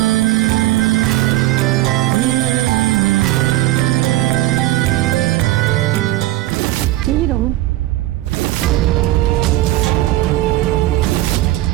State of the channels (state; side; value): quieter; left; 16.0 dB